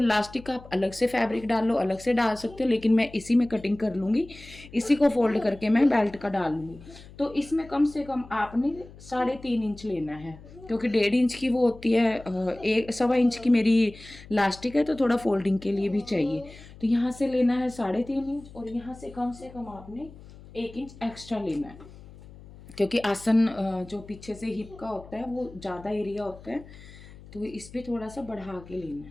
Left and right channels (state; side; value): noise; left; hum, 19 dB below the sound